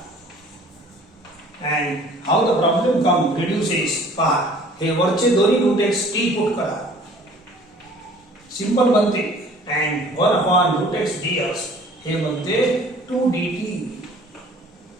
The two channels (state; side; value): normal; both; correlation 0.51